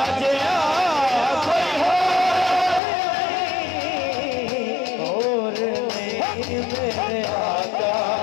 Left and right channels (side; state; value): right; drops out; at 2.8 s